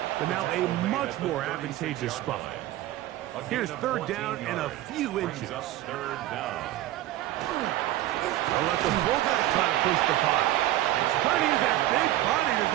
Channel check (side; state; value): left; quieter; 15.0 dB